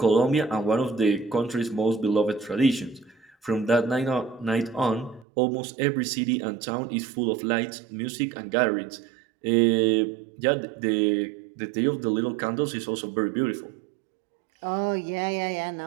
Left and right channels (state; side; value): drops out; left; at 5.2 s